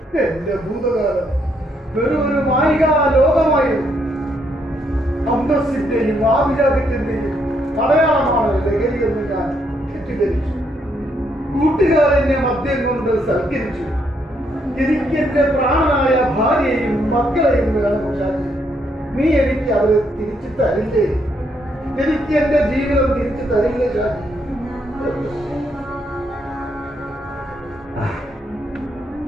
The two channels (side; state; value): both; normal; correlation 0.74